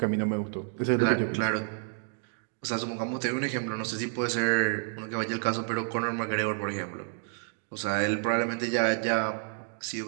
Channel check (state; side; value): silent; left; 58 dB below the other